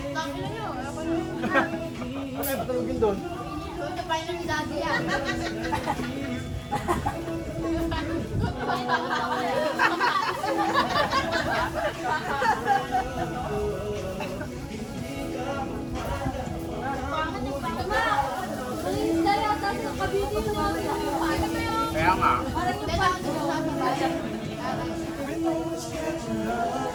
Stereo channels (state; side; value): identical; both; correlation 1.00